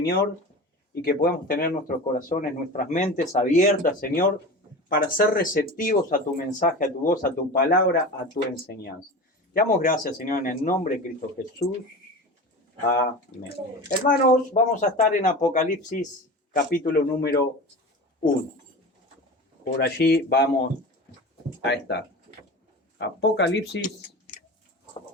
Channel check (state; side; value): normal; both; correlation 0.31